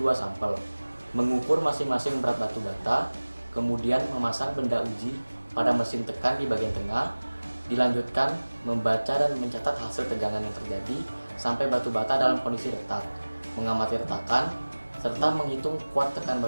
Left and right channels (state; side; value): inverted; both; correlation -1.00